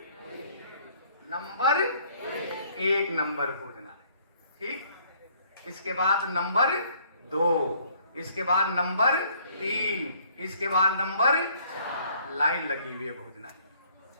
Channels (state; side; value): inverted; both; correlation -0.61